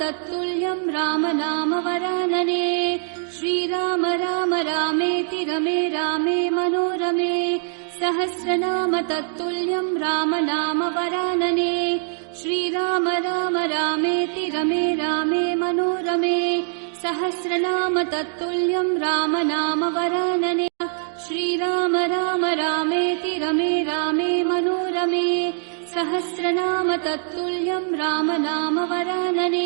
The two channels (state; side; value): silent; left; 60 dB below the other